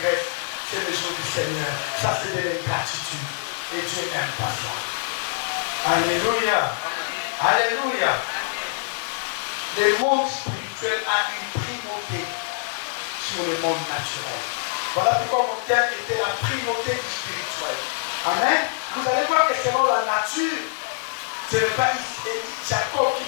graisse, c'est le jour du Seigneur. Ça, c'est de l'ingratitude. Et Dieu n'aime pas ça. Alléluia. Alléluia. Le monde spirituel a une primauté sur le monde naturel. Voilà pourquoi mon thème était la primauté du spirituel. Amen. Vous allez voir que selon la nature, ce n'est pas Jacob qui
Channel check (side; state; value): right; silent; 62 dB below the other